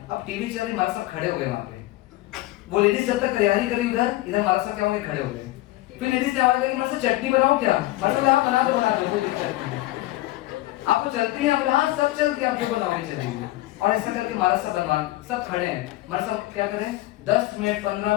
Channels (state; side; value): quieter; right; 17.6 dB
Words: अब टीवी चल रही, महाराज साहब खड़े हो गए वहां पे। वो लेडीज जब तक तैयारी करी उधर, इधर महाराज साहब क्या हो गए? खड़े हो गए। फिर लेडीज ने आवाज लगी, महाराज साहब चटनी बनाओ क्या? महाराज साहब आप बना दो, कोई दिक्कत नहीं। आपको चलती है? हाँ सब चलती है, आप जो बनाओगे चलेगी। और ऐसा करके महाराज साहब बनवा, सब खड़े हैं। महाराज साहब क्या करें? 10 मिनट 15